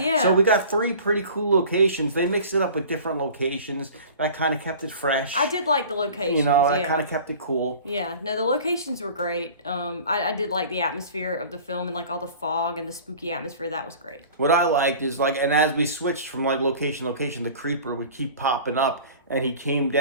Yeah. So we got 3 pretty cool locations. They mixed it up with different locations. That kind of kept it fresh. I did like the locations. That kind of kept it cool. Yeah, no, the locations were great. I did like the atmosphere of the film and like all the fog and the spooky atmosphere. That was great. What I liked is like, and as we switched from like location to location, the creeper would keep popping up. And he came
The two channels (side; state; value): both; inverted; correlation -0.42